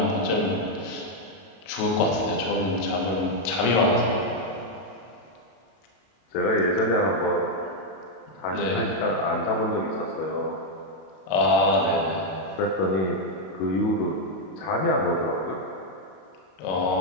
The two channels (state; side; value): late; right; 32 ms